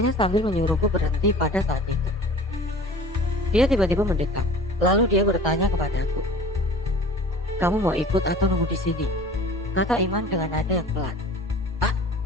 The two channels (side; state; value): both; normal; correlation 0.42